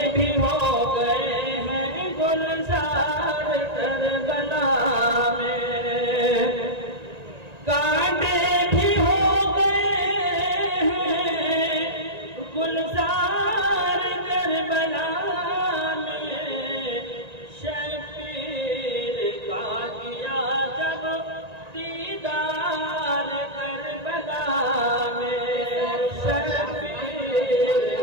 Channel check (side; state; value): left; late; 1.9 ms